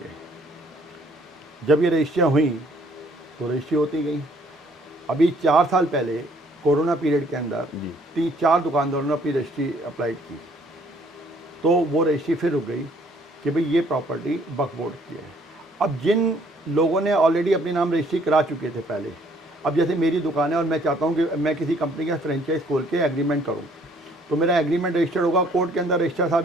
जब ये रजिस्ट्रियाँ हुई तो रजिस्ट्री होती गई। अभी 4 साल पहले कोरोना पीरियड के अंदर जी 3-4 दुकानदारों ने अपनी रजिस्ट्री अप्लाइड की, तो वो रजिस्ट्री फिर रुक गई कि भाई ये प्रॉपर्टी वक्फ बोर्ड की है। अब जिन लोगों ने ऑलरेडी अपने नाम रजिस्ट्री करा चुके थे पहले, अब जैसे मेरी दुकान है और मैं चाहता हूँ कि मैं किसी कंपनी का फ्रेंचाइज खोल के एग्रीमेंट करूँ, तो मेरा एग्रीमेंट रजिस्टर्ड होगा, कोर्ट के अंदर रजिस्ट्रार साहब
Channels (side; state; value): both; normal; correlation 0.62